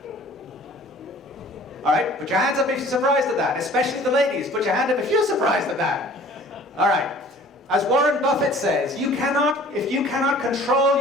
All right, put your hands up if you're surprised at that, especially the ladies. Put your hand up if you're surprised at that. All right. As Warren Buffett says, if you cannot control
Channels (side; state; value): both; normal; correlation 0.50